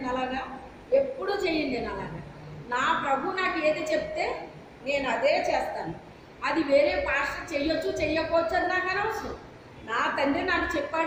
అలాగా? ఎప్పుడూ చెయ్యను నేను అలాగా. నా ప్రభు నాకు ఏది చెప్తే నేను అదే చేస్తాను. అది వేరే పాస్టర్ చెయ్యొచ్చు చెయ్యకపోవచ్చు అది నాకు అనవసరం. నా తండ్రి నాకు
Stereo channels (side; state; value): both; identical; correlation 1.00